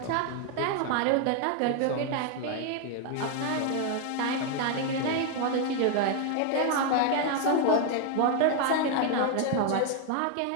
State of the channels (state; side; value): different; both; correlation 0.00